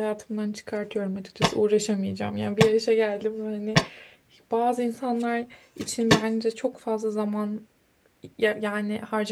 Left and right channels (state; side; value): identical; both; correlation 1.00